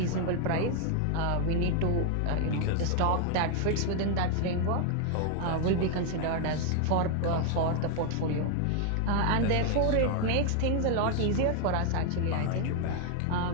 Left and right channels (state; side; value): different; both; correlation 0.00